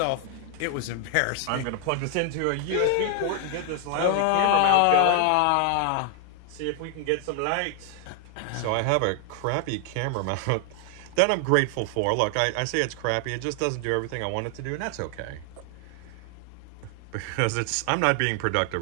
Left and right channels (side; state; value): both; different; correlation 0.00